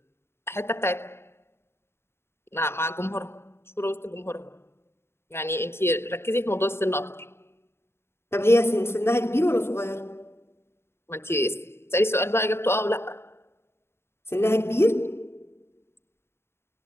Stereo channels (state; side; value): late; right; 0.12 ms